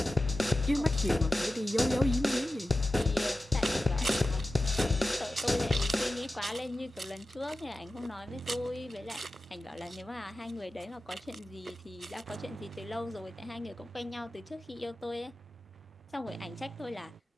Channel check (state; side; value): normal; both; correlation 0.93